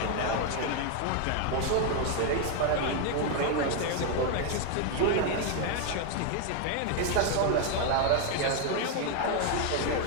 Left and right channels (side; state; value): both; different; correlation 0.00